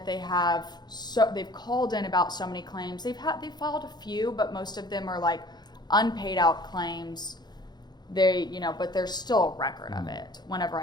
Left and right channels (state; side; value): late; right; 0.20 ms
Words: they've called in about so many claims. They've filed a few, but most of them are like unpaid out claims. But there's still a record of it whenever